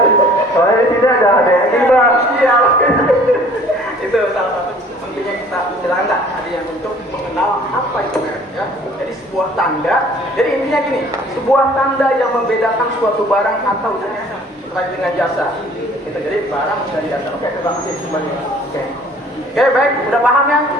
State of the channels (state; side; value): normal; both; correlation 0.53